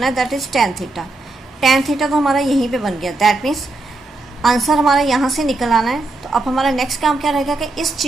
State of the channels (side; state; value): left; quieter; 3.1 dB